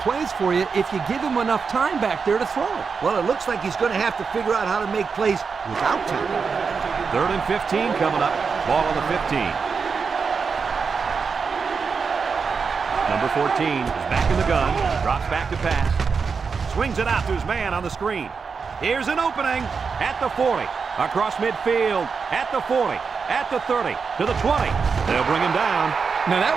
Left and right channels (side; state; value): left; quieter; 5.4 dB